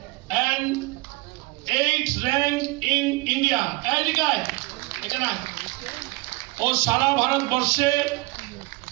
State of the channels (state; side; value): quieter; left; 24.2 dB